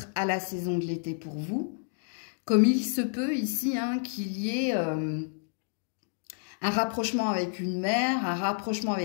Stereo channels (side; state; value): right; silent; digital silence